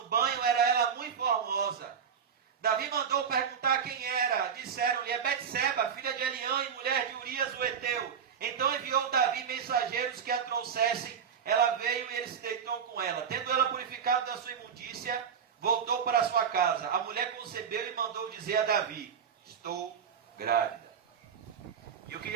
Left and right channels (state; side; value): quieter; left; 7.3 dB